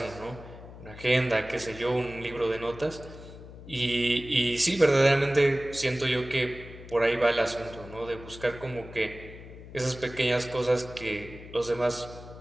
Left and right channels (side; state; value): left; noise; hum, 16 dB below the sound